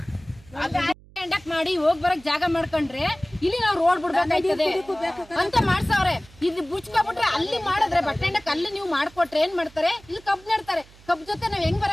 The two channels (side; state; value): right; noise; hum, 24 dB below the sound